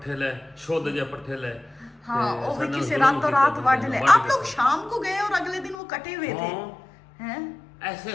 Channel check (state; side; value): drops out; right; at 5.8 s